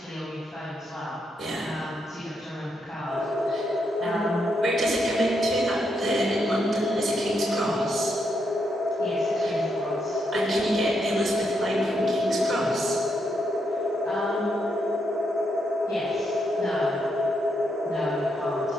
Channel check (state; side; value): normal; both; correlation 0.80